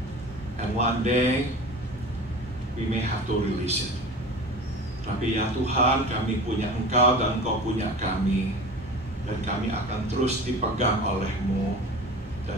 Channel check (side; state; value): both; normal; correlation 0.36